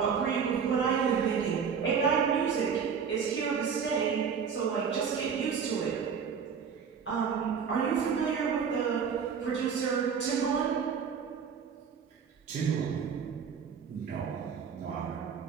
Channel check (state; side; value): quieter; left; 6.6 dB